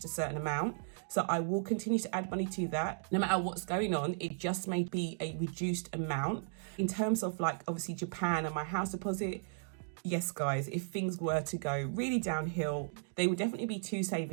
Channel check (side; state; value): left; silent; digital silence